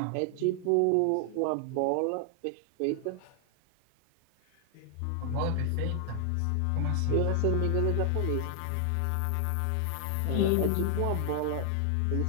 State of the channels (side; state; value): both; different; correlation 0.00